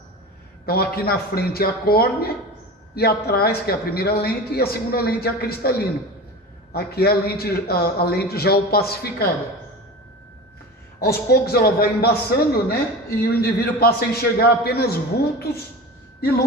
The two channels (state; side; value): normal; both; correlation 0.32